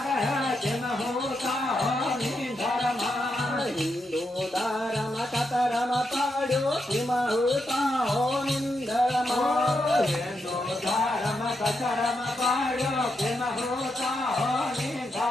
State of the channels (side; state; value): both; normal; correlation 0.83